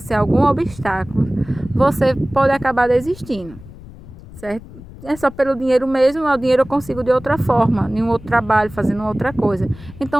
algum obstáculo, você pode acabar desistindo, certo? É só pelo dinheiro mesmo, o dinheiro eu consigo de outra forma, em um outro trabalho, fazendo outra coisa.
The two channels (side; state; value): left; noise; rumble, 17 dB below the sound